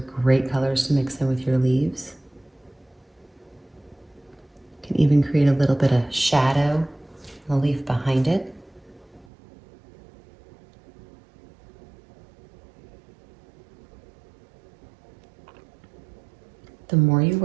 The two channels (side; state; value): left; drops out; at 9.2 s